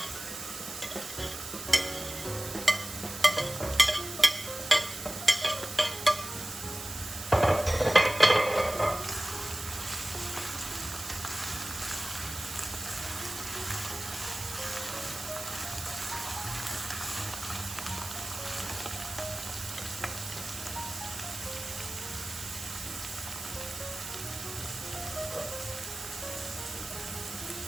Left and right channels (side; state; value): right; noise; hiss, 9 dB below the sound